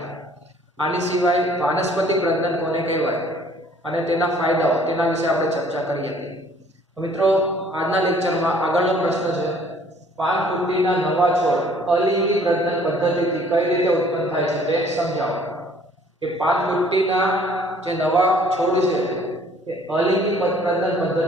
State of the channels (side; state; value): both; normal; correlation 0.57